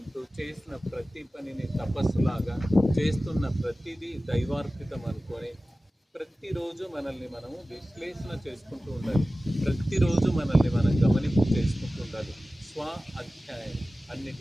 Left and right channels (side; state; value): both; normal; correlation 0.96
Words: చేసిన ప్రతి పనిని తపస్సులాగా చేస్తున్న ప్రతిదీ దైవార్పితం అనుకొని ప్రతిరోజు మనల్ని మనము విశ్లేషణ చేసుకుంటూ ఉండాలి. ప్రతిరోజు మనల్ని మనం గమనింపు చేసుకుంటూ ఉండాలి. స్వ అధ్యాయం